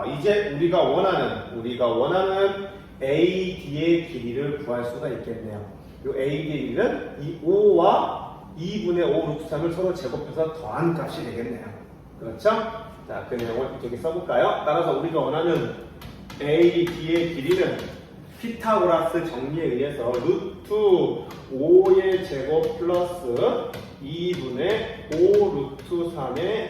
이제 우리가 원하는 AD의 길이를 구할 수가 있겠네요. 이 AD의 길이는 이 5와 2분의 5 루트 3을 서로 제곱해서 더한 값이 되겠네요. 그렇죠? 자, 그 내용을 이쪽에 써볼까요? 따라서 우리가 원하는 AD의 길이는 피타고라스 정리에 의해서 루트 5의 제곱 플러스 2분의 5 루트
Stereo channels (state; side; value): identical; both; correlation 1.00